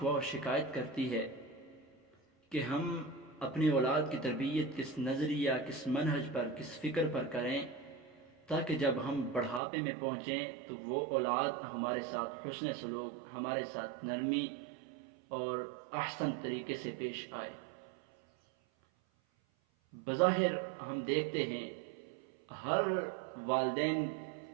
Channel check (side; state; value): left; drops out; at 9.6 s